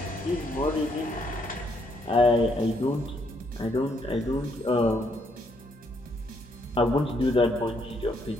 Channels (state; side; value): normal; both; correlation 0.72